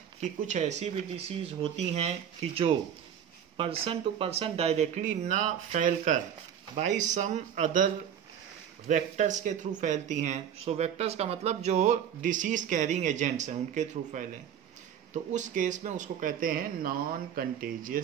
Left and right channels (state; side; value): quieter; left; 8.9 dB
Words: कि कुछ ऐसी भी डिसीज होती हैं कि जो पर्सन टू पर्सन डायरेक्टली ना फैलकर बाई सम अदर वेक्टर्स के थ्रू फैलती हैं। सो वेक्टर्स का मतलब जो डिसीज कैरिंग एजेंट्स हैं उनके थ्रू फैले, तो उस केस में उसको कहते हैं non